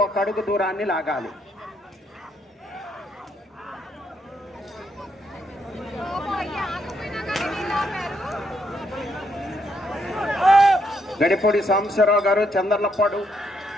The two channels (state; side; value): normal; both; correlation 0.75